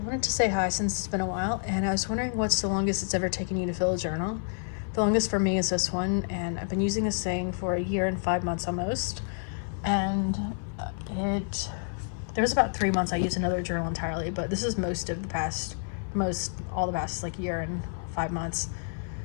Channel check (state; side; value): silent; right; 56 dB below the other